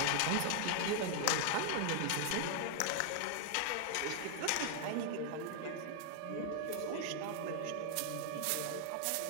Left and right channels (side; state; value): both; different; correlation 0.00